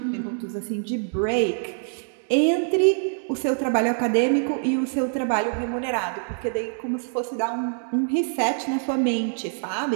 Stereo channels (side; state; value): left; silent; digital silence